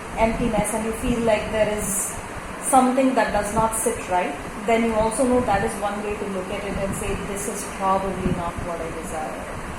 emptiness and you feel like there is something that does not sit right, then you also know that is one way to look at it and say, this is probably not what I desire.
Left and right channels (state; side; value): identical; both; correlation 1.00